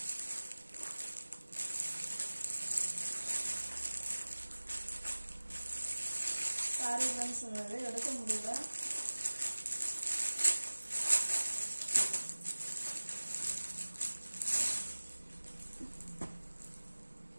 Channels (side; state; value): both; inverted; correlation -1.00